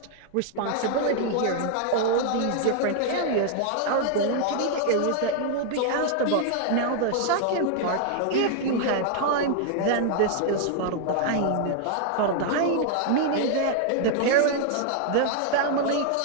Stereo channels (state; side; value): different; both; correlation 0.00